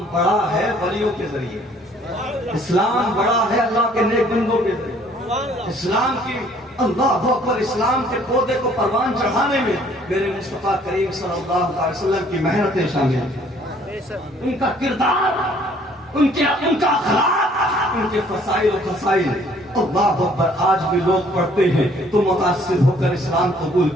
بڑا ہے ولیوں کے ذریعے، اسلام بڑا ہے اللہ کے نیک بندوں کے ذریعے. اسلام کی اللہ اکبر، اسلام کے پودے کو پروان چڑھانے میں میرے مصطفیٰ کریم صلی اللہ علیہ وسلم کی محنتیں شامل ہیں، ان کا کردار، ان کا اخلاق، ان کے فضائل و خصائل. اللہ اکبر، آج بھی لوگ پڑھتے ہیں تو متاثر ہو کر اسلام قبول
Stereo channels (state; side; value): normal; both; correlation 0.59